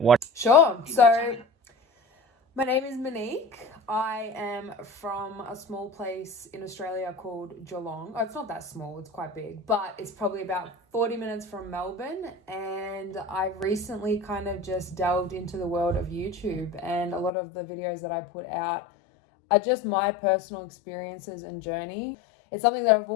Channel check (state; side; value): drops out; right; at 17.3 s